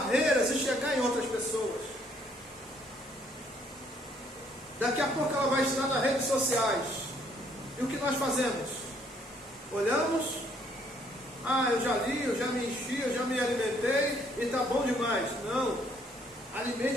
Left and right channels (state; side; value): normal; both; correlation 0.66